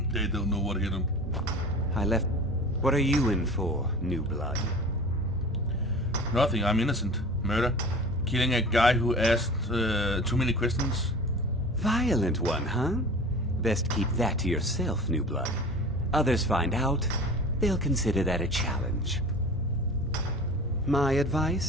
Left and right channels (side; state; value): both; normal; correlation 0.38